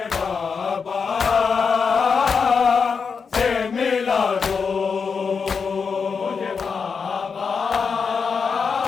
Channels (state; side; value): quieter; right; 5.6 dB